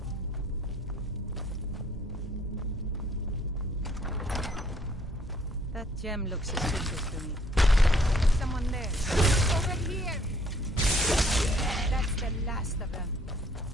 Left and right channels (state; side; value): normal; both; correlation 0.63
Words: That gem looks suspicious to me. Someone there. Over here! That's the last of them.